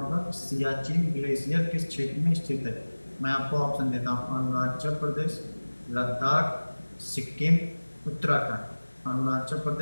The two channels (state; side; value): inverted; both; correlation -1.00